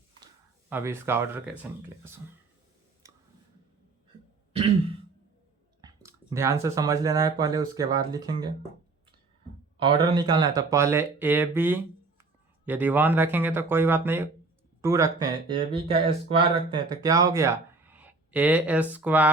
अब इसका ऑर्डर कैसे निकलेगा सो ध्यान से समझ लेना है पहले, उसके बाद लिखेंगे। ऑर्डर निकालना है तो पहले ए बी यदि 1 रखेंगे तो कोई बात नहीं, 2 रखते हैं, ए बी का स्क्वायर रखते हैं तो क्या हो गया? ए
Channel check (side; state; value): left; quieter; 3.7 dB